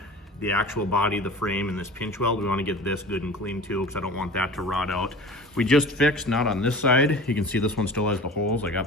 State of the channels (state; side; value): normal; both; correlation 0.39